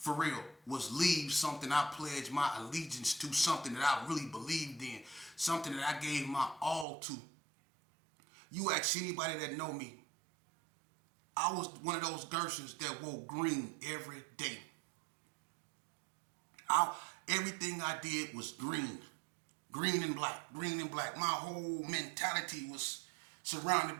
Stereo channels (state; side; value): drops out; left; at 6.9 s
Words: real, was leave something I pledged my allegiance to, something that I really believed in, something that I gave my all to. You ask anybody that know me, I was one of those Gersons that wore green every day. Everything I did was green. Green and black, green and black. My whole mentality was surrounded